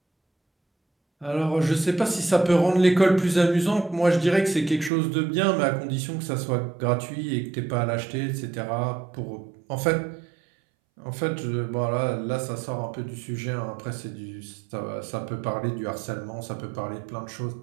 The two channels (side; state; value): left; drops out; at 4.9 s